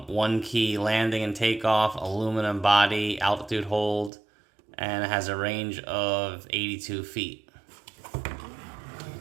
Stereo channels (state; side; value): drops out; left; at 4.1 s